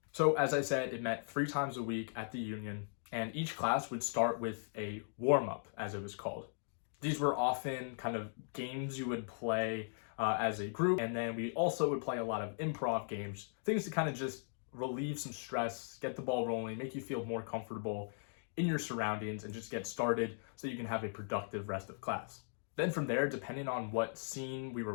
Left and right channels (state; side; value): silent; right; digital silence